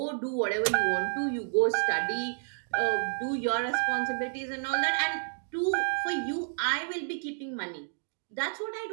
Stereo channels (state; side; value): silent; left; digital silence